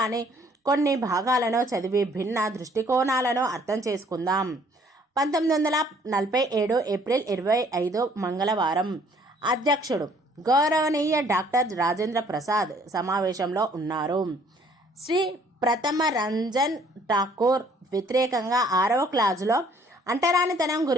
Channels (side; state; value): both; normal; correlation 0.61